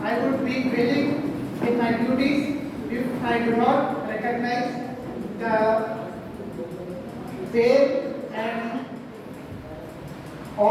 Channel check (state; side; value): identical; both; correlation 1.00